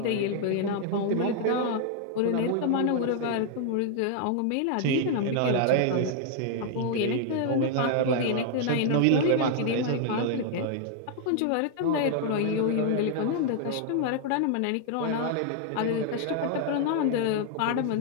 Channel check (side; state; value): both; different; correlation 0.00